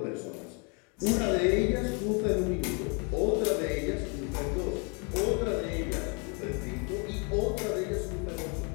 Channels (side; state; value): right; quieter; 35.0 dB